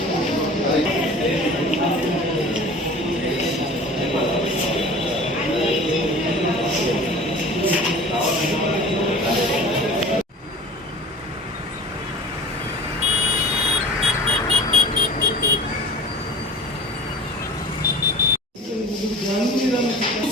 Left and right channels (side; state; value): both; normal; correlation 0.40